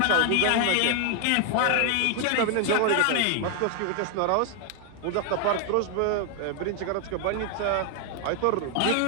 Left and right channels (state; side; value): different; both; correlation 0.00